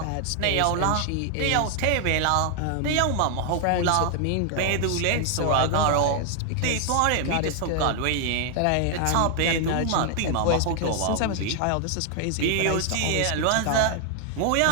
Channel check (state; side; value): different; both; correlation 0.00